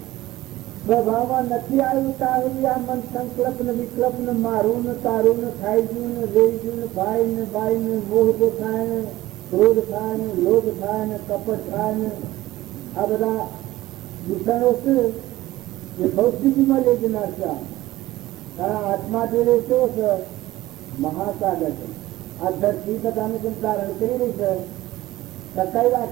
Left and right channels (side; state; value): left; quieter; 16.8 dB